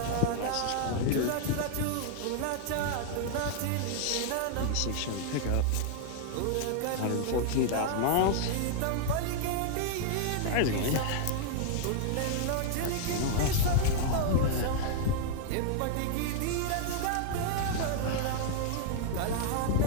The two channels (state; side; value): different; both; correlation -0.01